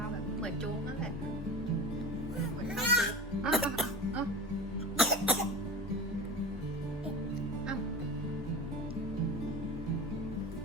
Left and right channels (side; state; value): both; normal; correlation 0.30